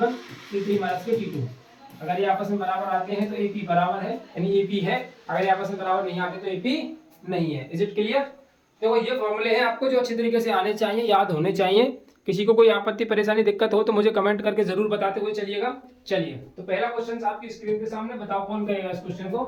T3 minus T2। अगर ये आपस में बराबर आते हैं तो एपी बराबर है, यानी एपी है। अगर ये आपस में बराबर नहीं आते तो एपी नहीं है। Is it clear? देखो ये फॉर्मूले हैं आपको जो अच्छी तरीके से आने चाहिए, याद होने चाहिए। किसी को कोई आपत्ति परेशानी दिक्कत हो तो मुझे कमेंट करके जरूर बताते हुए चलिएगा। चलिए, तो पहला क्वेश्चन आपकी स्क्रीन के सामने, बताओ कौन करेगा इस क्वेश्चन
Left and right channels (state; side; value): identical; both; correlation 1.00